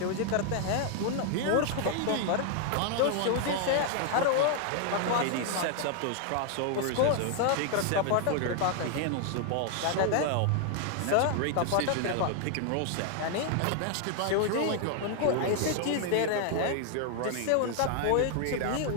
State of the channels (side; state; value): both; different; correlation 0.00